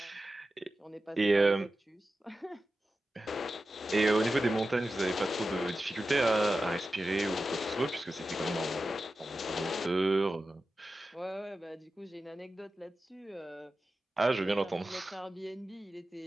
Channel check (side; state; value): both; normal; correlation 0.93